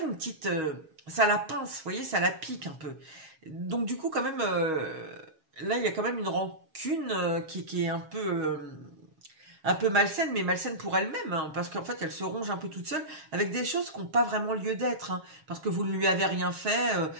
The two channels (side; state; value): left; late; 7.4 ms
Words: une petite... ça la pince, vous voyez, ça la pique un peu. Donc du coup, quand même, là, il y a quand même une rancune qui est un peu malsaine, mais malsaine pour elle-même, hein, parce qu'en fait, elle se ronge un peu toute seule avec des choses qui n'ont pas vraiment lieu d'être, hein, parce que vous ne lui avez rien fait,